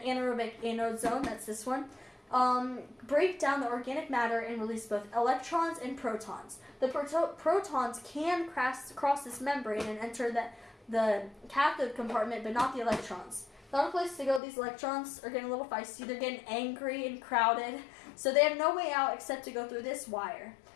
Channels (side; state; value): right; drops out; at 14.4 s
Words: anode zone, that's this one, break down the organic matter and release both electrons and protons. The protons can cross this membrane and enter the cathode compartment, but not the electrons. Not a place to go. These electrons are getting a little feisty. They're getting angry and crowded, so they have no way out except to go through this wire.